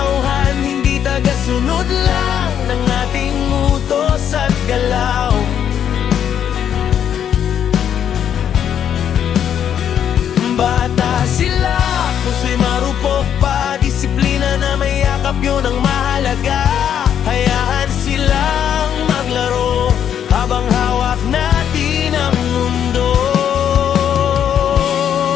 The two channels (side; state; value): right; quieter; 9.2 dB